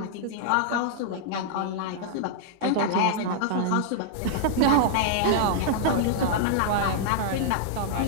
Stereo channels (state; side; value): different; both; correlation -0.01